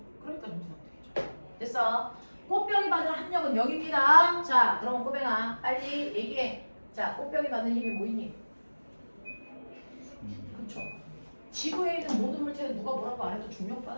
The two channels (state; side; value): inverted; both; correlation -1.00